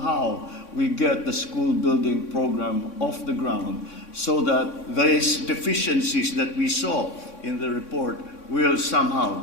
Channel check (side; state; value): right; late; 3.6 ms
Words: how we get the school building program off the ground so that these deficiencies that we saw in the report will somehow